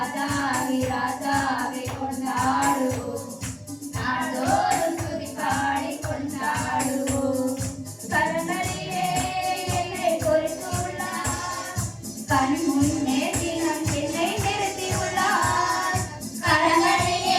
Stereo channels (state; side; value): identical; both; correlation 1.00